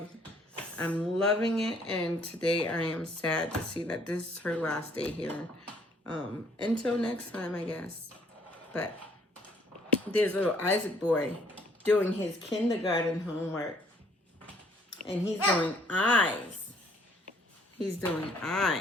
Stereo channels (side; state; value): both; normal; correlation 0.62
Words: loving it, and today I am sad to see that this is her last day here. Until next time, I guess. But there's little Isaac boy doing his kindergarten homework, and he's doing eyes. He's doing